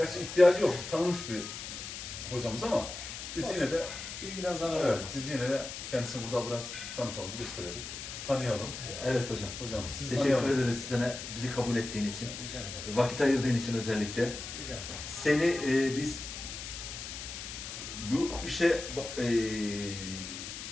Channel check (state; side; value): noise; left; hiss, 8 dB below the sound